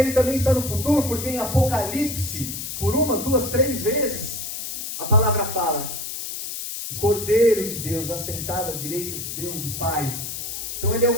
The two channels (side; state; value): left; noise; hiss, 6 dB below the sound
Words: também está no futuro, porque em Apocalipse, por 1, 2, 3 vezes, a palavra fala, o Cordeiro de Deus assentado à direita de Deus, do Pai. Então ele é